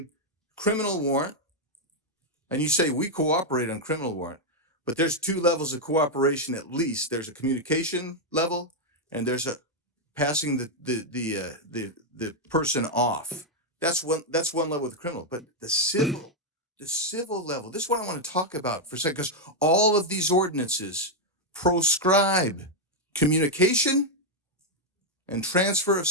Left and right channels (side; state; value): both; normal; correlation 0.00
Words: criminal warrant, and you say we cooperate on criminal warrant, but there's 2 levels of cooperation at least. There's a communication level, and there's a passing the person off. That's one level with the criminal, but the civil level. This is what I want to talk about for a second, because all of these ordinances proscribe communication and transfer of